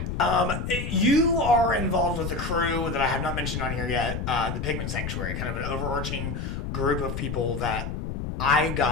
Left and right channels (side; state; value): left; noise; rumble, 4 dB below the sound